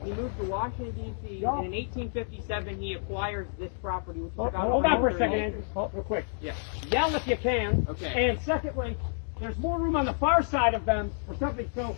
moved to Washington, D.C. And in 1857, he acquired this property. Which is about Hold on for a 100 second, acres. Andrew. Real quick. Yeah. Yell if you can. Okay. And secondly, there's more room on the far side of them for something. So,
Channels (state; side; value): silent; right; digital silence